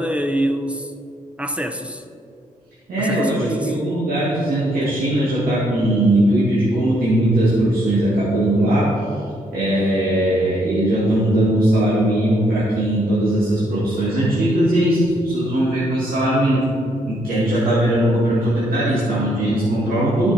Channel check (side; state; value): both; normal; correlation 0.71